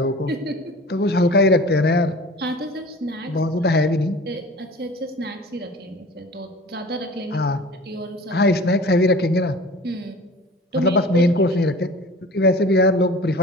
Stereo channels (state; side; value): normal; both; correlation 0.41